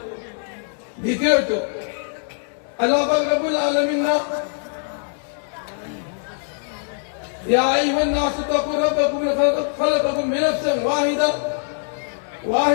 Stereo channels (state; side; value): silent; right; digital silence